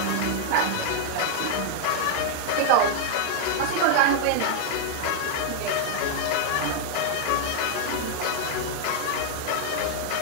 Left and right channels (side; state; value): both; different; correlation 0.00